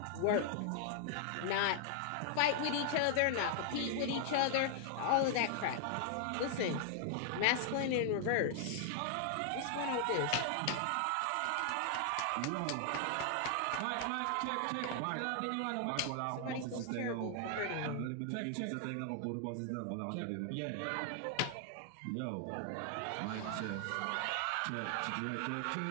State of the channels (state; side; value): different; both; correlation 0.00